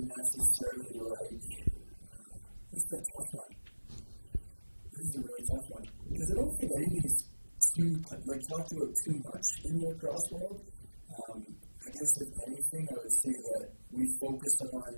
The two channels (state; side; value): inverted; both; correlation -1.00